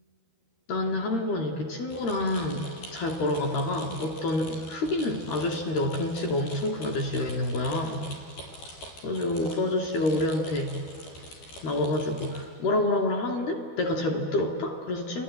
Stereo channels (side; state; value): right; late; 12 ms